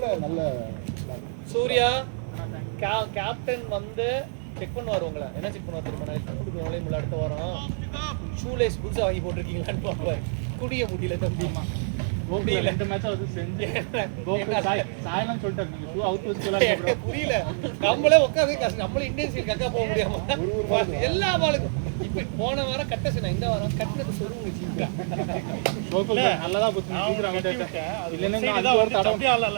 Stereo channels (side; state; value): left; silent; 61 dB below the other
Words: நல்ல சூர்யா கேப்டன் வந்து செக் பண்ணுவார் உங்களை. என்ன செக் பண்ணுவார் தெரியுமா? நான் கொடுக்குறவங்களே முள்ள அடுத்த வாரம் ஷூலேஸ் புதுசாக வாங்கி போட்டிருக்கீங்களான்னு பார்ப்பார். குடிய முடியல தம்பி. முடியல. 2 மேட்ச் அது செஞ்சு சாயலாம் சொல்லிட்டாரு. நீங்க ஷூ அவுட் வச்சுக்கலாம். புரியல. நம்மளே உட்காந்து நம்மளே இந்தியன் சைடு கக்கா போக முடியாம எல்லா பாலுக்கும் இப்ப போன வாரம் கட்டசனா இந்த வாரம் கட்டினது சொல்லுங்க ஜீவிகா. கோகுல் நல்லதா போச்சு. சீக்கிரம் அவுட் ஆயிட்டேன். இல்லன்னா அது ஒரு தடவை